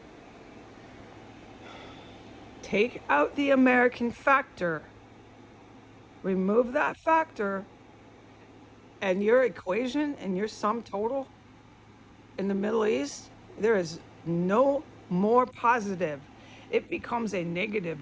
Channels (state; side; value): identical; both; correlation 1.00